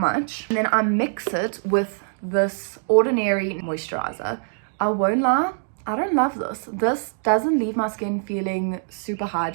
and then I mix it with this Ordinary moisturizer. I won't lie, I don't love this. This doesn't leave my skin feeling super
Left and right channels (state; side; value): silent; left; 60 dB below the other